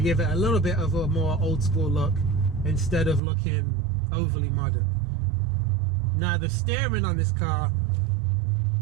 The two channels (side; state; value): left; drops out; at 3.2 s